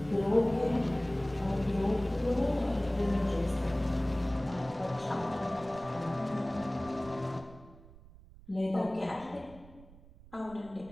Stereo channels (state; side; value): noise; right; rumble, 21 dB below the sound